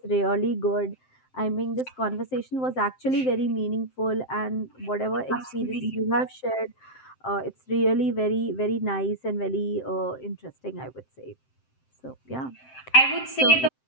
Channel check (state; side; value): late; right; 7.7 ms